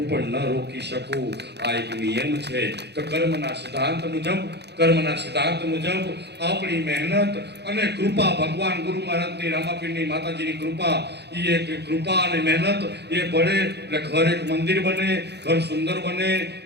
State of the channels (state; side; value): late; left; 0.49 ms